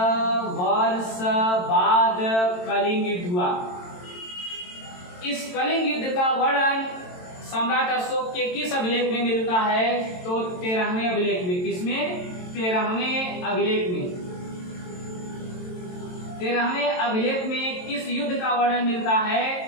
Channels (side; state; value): right; late; 22 ms